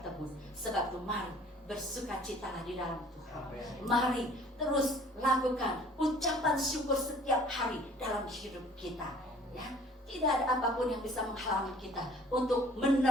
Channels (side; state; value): both; normal; correlation 0.52